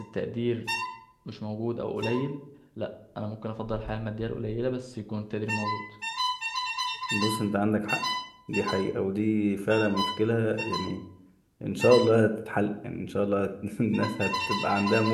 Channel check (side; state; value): both; identical; correlation 1.00